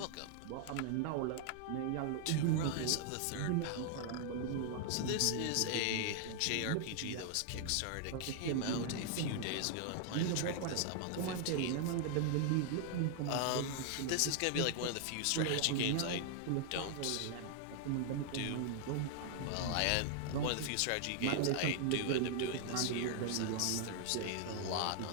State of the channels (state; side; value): different; both; correlation 0.00